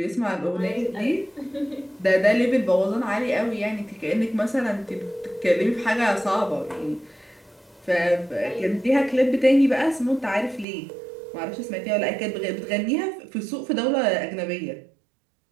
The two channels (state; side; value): drops out; left; at 10.7 s